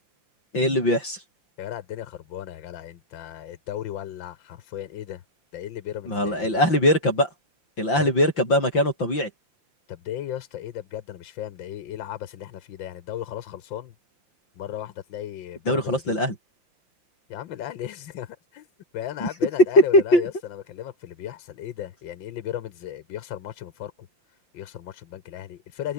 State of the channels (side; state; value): right; late; 5.8 ms